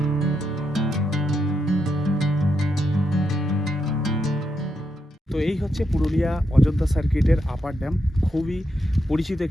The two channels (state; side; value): normal; both; correlation 0.82